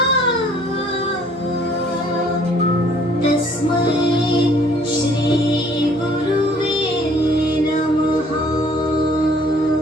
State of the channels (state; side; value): normal; both; correlation 0.58